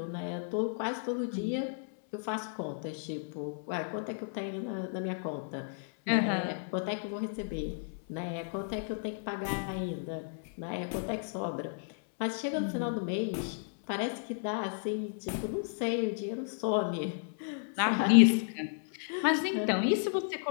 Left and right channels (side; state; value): right; silent; 56 dB below the other